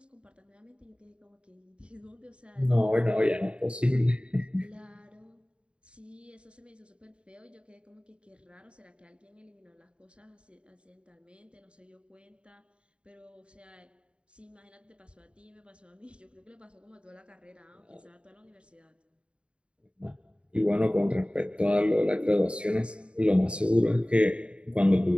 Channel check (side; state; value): left; late; 0.056 ms